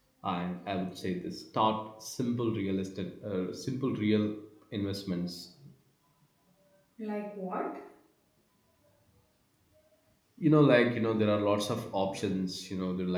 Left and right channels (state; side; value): identical; both; correlation 1.00